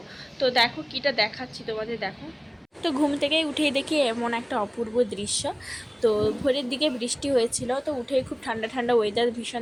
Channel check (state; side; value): identical; both; correlation 1.00